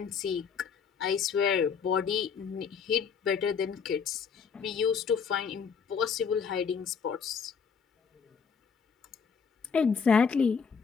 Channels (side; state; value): right; quieter; 6.2 dB